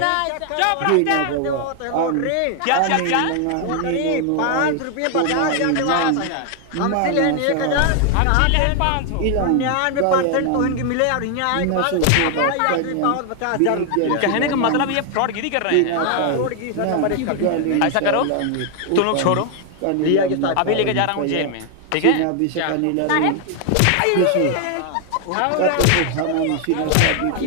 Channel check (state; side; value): different; both; correlation 0.00